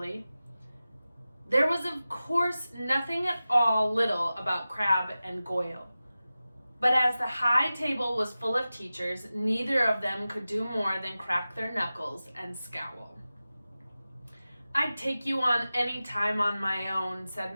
There was, of course, nothing at all little about Crabbe and Goyle. But as the high table was full of teachers, neither of them could do more than crack their knuckles and scowl. I'd take you on any time on my own,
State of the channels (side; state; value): both; inverted; correlation -0.95